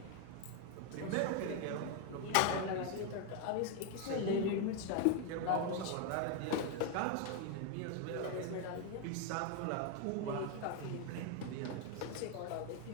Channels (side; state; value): both; different; correlation 0.01